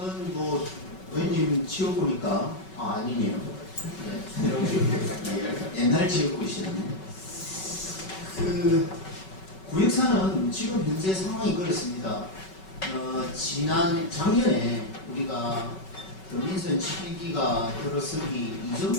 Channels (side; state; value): right; late; 5.3 ms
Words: 뭐 의원님 지어보니까 아니네요. 네. 옛날 지역구이시네. 그 구역사는 지금 현재 상황이 그렇습니다. 작년에 우리가 민선 7기가 들어서기